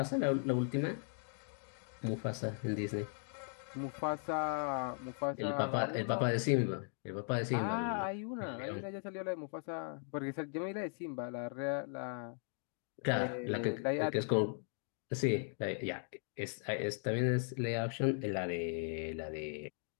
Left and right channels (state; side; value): silent; right; 52 dB below the other